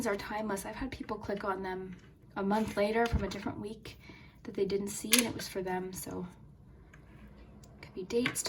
are timeless. I've had people click on them a month later from a different week that they didn't see, and it was for them. So it could be dates,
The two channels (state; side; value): identical; both; correlation 1.00